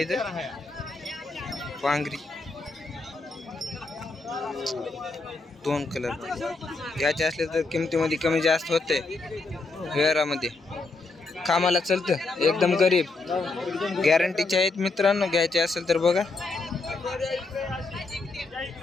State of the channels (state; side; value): quieter; right; 3.5 dB